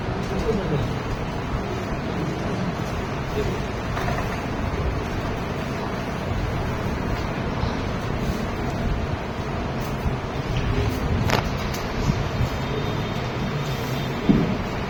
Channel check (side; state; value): both; identical; correlation 1.00